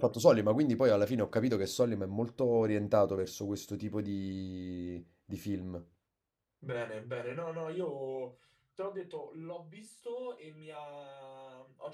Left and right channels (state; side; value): identical; both; correlation 1.00